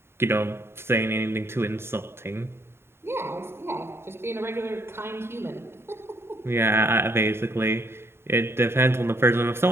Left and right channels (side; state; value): left; late; 0.12 ms